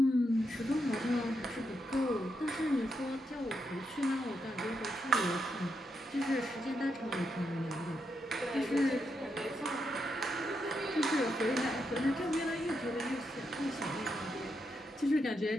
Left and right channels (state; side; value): normal; both; correlation 0.82